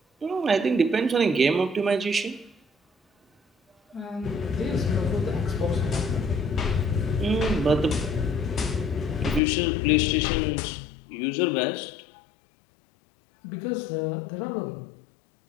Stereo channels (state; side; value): drops out; right; at 9.4 s